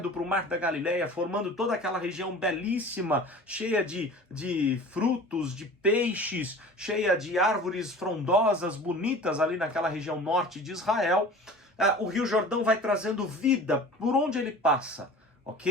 para o Mar da Galileia, formando toda aquela região belíssima, cheia de frutos, de peixes, cheia de árvores frondosas, bonitas ali naquela região norte de Israel. O Rio Jordão vai trazendo vida por onde ele passa,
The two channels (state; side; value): normal; both; correlation 0.40